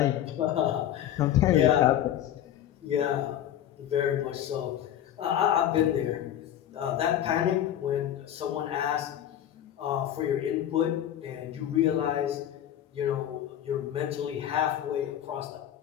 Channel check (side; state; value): right; quieter; 11.1 dB